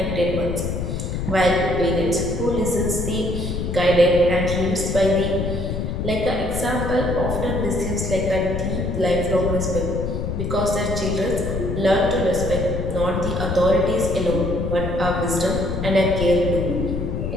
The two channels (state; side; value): noise; left; rumble, 3 dB below the sound